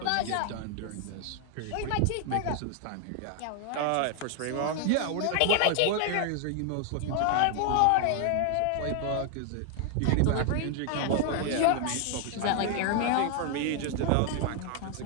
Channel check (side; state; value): both; different; correlation 0.00